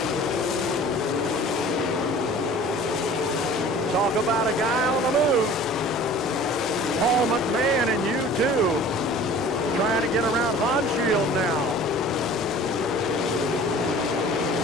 Talk about a guy on the move. Paul McMahon and U2 trying to get around Honshield now.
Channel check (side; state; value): both; normal; correlation 0.45